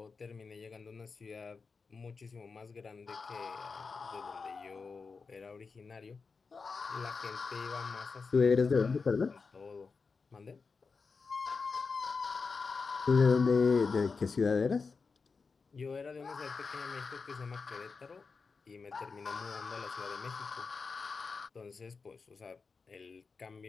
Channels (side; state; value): right; quieter; 4.8 dB